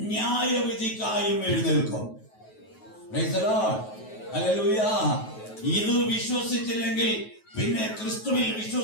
ന്യായവിധിക്കായും എഴുന്നേൽക്കും. Praise the Lord. ഹല്ലേലൂയ. ഇത് വിശ്വസിച്ചില്ലെങ്കിൽ പിന്നെ ക്രിസ്തുവിൽ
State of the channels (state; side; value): late; right; 9.3 ms